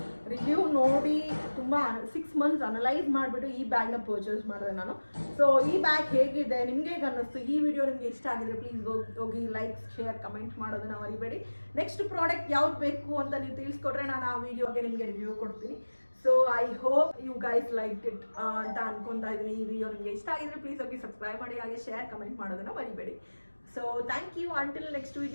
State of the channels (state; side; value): inverted; both; correlation -1.00